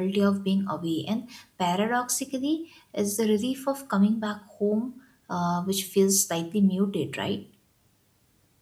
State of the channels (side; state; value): both; identical; correlation 1.00